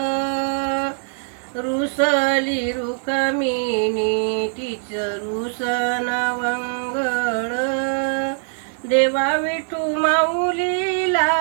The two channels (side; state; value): left; silent; digital silence